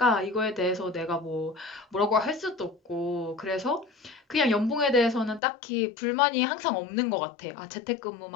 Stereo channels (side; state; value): right; drops out; at 5.4 s